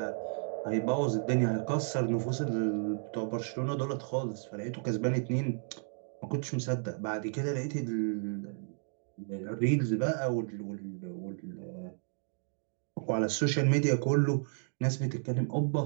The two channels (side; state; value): left; silent; 56 dB below the other